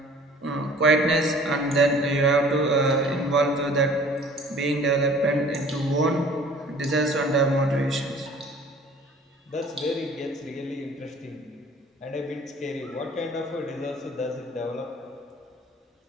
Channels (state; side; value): normal; both; correlation 0.50